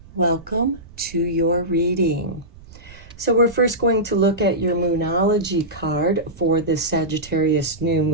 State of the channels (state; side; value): noise; right; rumble, 20 dB below the sound